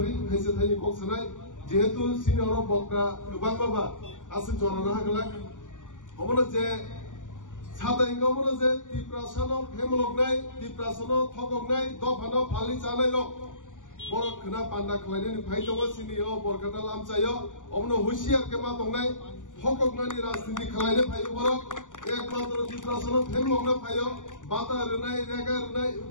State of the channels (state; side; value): late; right; 0.87 ms